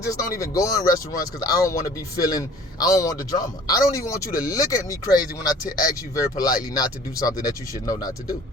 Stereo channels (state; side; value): normal; both; correlation 0.50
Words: don't even go in restaurants because I don't want to be I don't want the drama. I don't even want you to look at me crazy when I ask you very politely not to do something that you should know not to do.